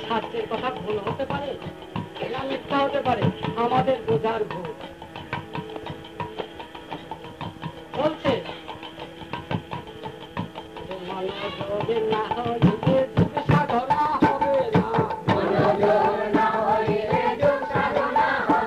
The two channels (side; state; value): both; identical; correlation 1.00